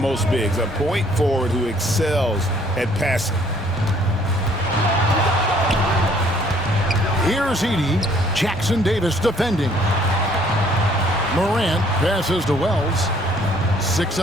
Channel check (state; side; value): noise; left; hum, 24 dB below the sound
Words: most bigs, a point forward who excels at passing. Here's Edey. Jackson Davis defending. Morant passes to Wells. 6